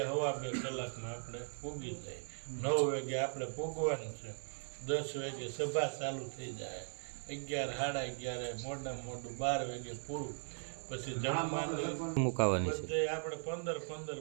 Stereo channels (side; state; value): left; silent; 52 dB below the other